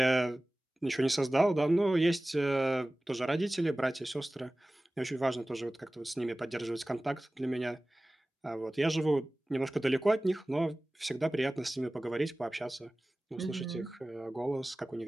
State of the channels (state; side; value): normal; both; correlation 0.98